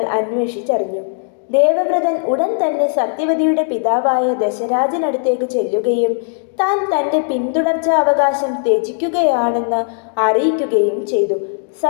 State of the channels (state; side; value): silent; right; digital silence